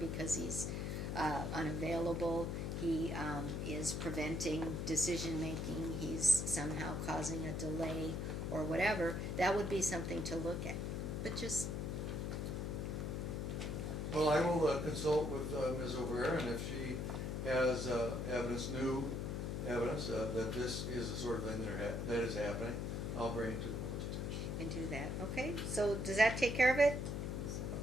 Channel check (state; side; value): noise; left; hum, 2 dB below the sound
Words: he's unavailable, he is preventing decision-making, he's somehow causing a delay or whatever, that would be something to look at. But just, Well, I will consult with Ms. Olivera, and if she has new evidence that this is the sort of thing that is happening, I'll bring it to the board's attention. and do that, okay? So does that take care of it?